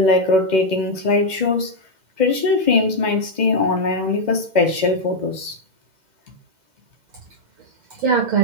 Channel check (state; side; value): late; left; 2.1 ms